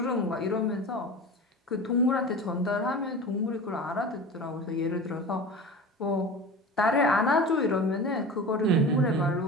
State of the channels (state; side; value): normal; both; correlation 0.33